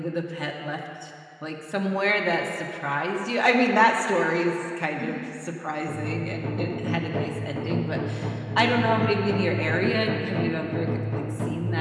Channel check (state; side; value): identical; both; correlation 1.00